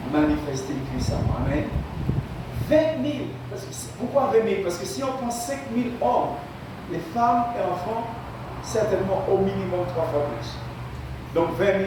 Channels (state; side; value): identical; both; correlation 1.00